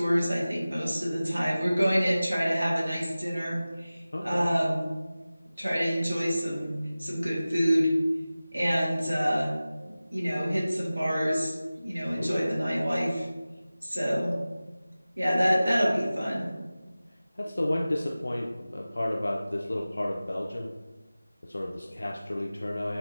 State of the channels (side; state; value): both; inverted; correlation -0.97